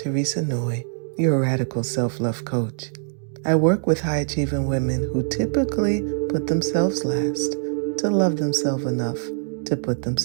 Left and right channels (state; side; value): silent; left; digital silence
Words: Noy, your radical self-love coach. I work with high-achieving women who typically put themselves last to love themselves enough to put